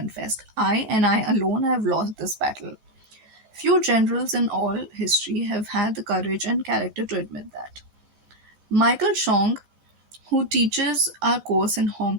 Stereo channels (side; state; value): left; late; 14 ms